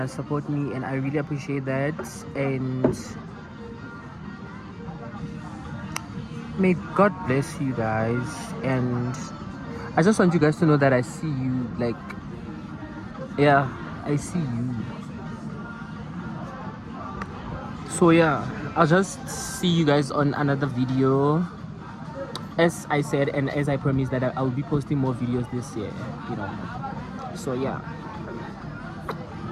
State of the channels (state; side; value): identical; both; correlation 1.00